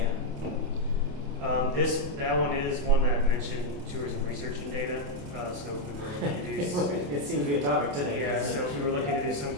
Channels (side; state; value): left; late; 28 ms